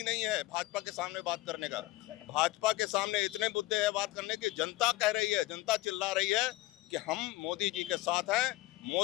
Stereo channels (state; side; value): quieter; right; 18.6 dB